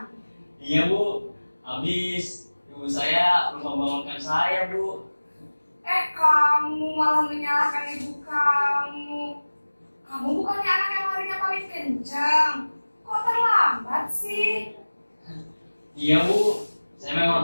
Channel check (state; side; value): inverted; both; correlation -1.00